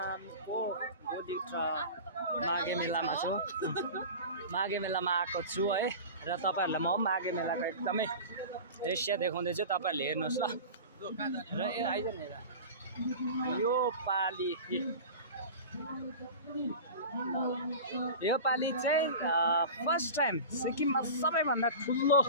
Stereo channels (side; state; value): both; inverted; correlation -0.33